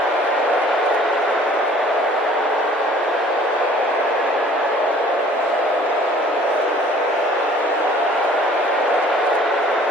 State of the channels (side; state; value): both; normal; correlation 0.53